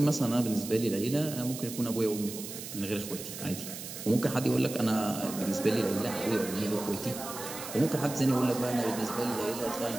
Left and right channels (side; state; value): right; noise; hiss, 10 dB below the sound